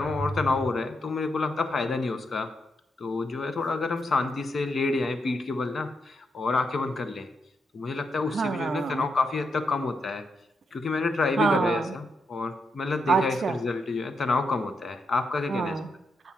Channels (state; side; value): normal; both; correlation 0.82